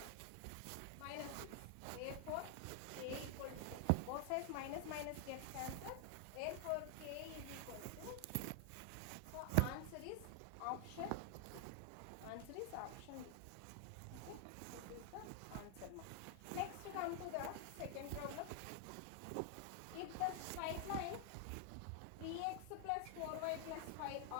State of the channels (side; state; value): both; different; correlation 0.00